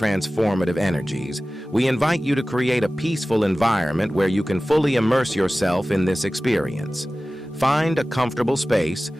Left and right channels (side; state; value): both; normal; correlation 0.97